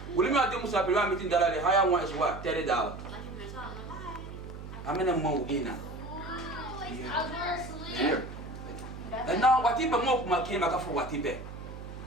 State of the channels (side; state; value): right; noise; hum, 11 dB below the sound